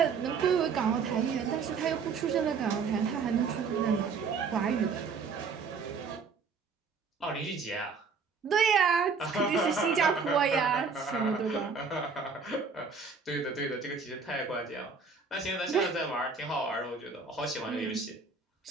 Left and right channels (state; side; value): quieter; left; 5.1 dB